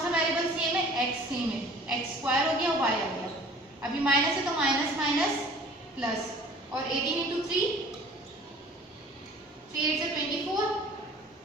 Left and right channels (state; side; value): normal; both; correlation 0.48